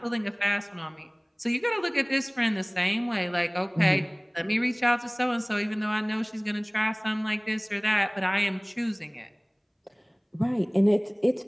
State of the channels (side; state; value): both; identical; correlation 1.00